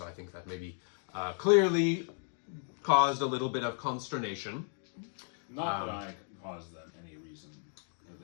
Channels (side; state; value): right; silent; 55 dB below the other